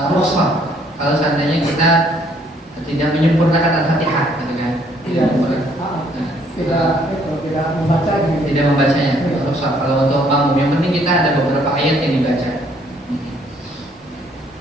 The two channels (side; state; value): both; normal; correlation 0.65